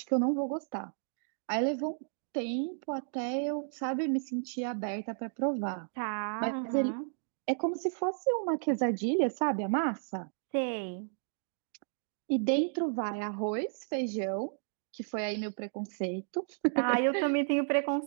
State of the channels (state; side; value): silent; left; digital silence